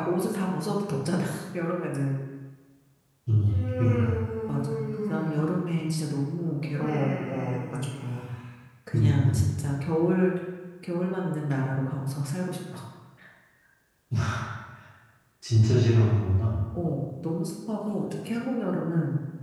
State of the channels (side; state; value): both; identical; correlation 1.00